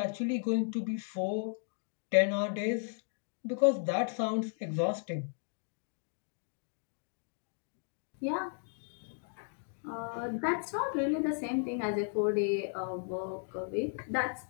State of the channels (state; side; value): silent; right; 54 dB below the other